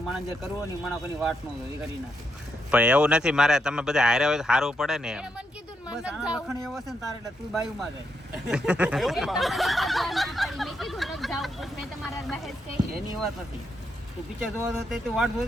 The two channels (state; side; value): normal; both; correlation 0.81